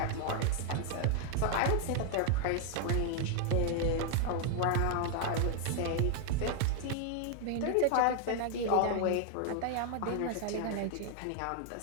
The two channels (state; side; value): different; both; correlation 0.00